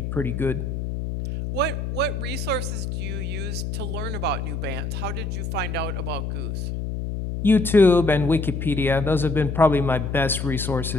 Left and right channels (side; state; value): left; noise; hum, 4 dB below the sound